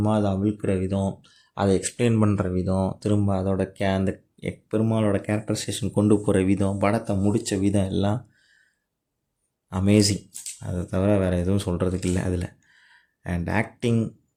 அதை அவிழ்க்கிற விதம், அதை எக்ஸ்பிளைன் பண்ணுற விதம், திரும்ப அதோட அந்த பெருமாளோட கேரக்டரைசேஷன் கொண்டு போகிற விதம், படத்தை முடித்த விதம் எல்லாம் அமேசிங். அதை தவிர வேறு எதுவும் சொல்கிறதுக்கு இல்லை அதில். அண்ட் ஆக்டிங்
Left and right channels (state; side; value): identical; both; correlation 1.00